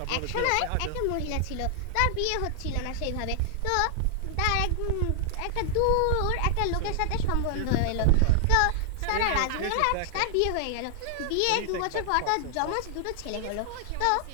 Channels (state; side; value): different; both; correlation 0.00